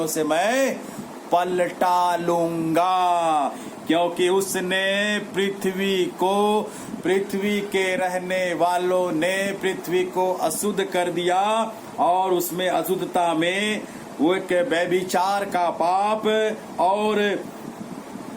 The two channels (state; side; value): identical; both; correlation 1.00